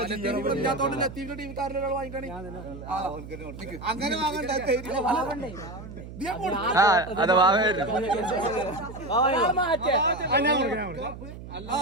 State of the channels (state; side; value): noise; right; hum, 13 dB below the sound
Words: അങ്ങനെ അതെ വാവേര്